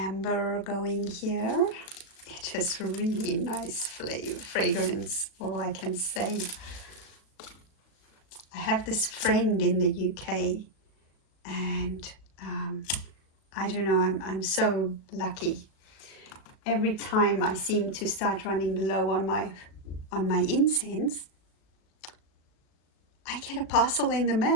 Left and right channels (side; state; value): right; late; 37 ms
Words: going here. It has really nice fragrance, all I can say. I have this friend in the UK, and I don't know, I'm so lucky. Every time I seem to start running low on my incense, I get a parcel in the